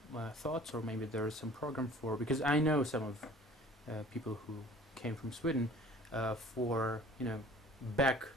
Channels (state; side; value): normal; both; correlation 0.48